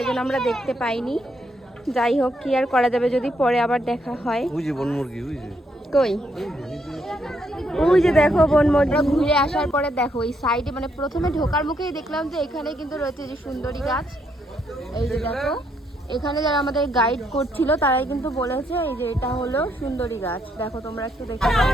জন্য আমরা দেখতে পাইনি। যাই হোক, কি আর করা যাবে, যদি পরে আবার দেখা হয়। ওই যে বনমুরগি, ওই যে কই, ওই যে দেখো বনমুরগি। ঘুরে আসার পরে দেখো এই সাইডে, মানে প্রথমে ঢোকার মুখেই দেখলাম যে এখানে কিন্তু রয়েছে যে সুন্দরী গাছ। এই যে দেখো, এখানে যারা আমাদের গাইড করছিল তারাই কিন্তু বলেছে এই যে এটা হলো সুন্দরী গাছ। দেখো তোমরা একটু দেখো।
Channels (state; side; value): normal; both; correlation 0.75